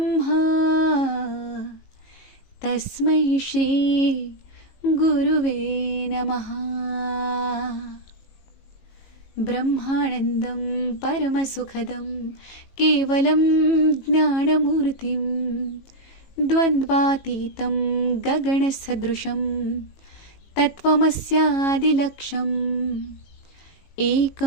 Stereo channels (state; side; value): late; right; 18 ms